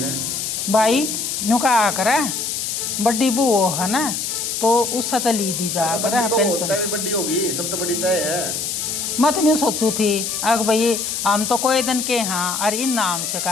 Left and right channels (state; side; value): noise; left; hiss, 3 dB below the sound